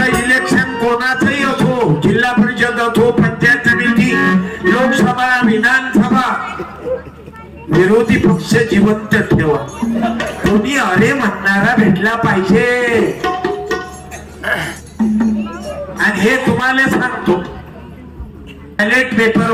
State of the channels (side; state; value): both; identical; correlation 1.00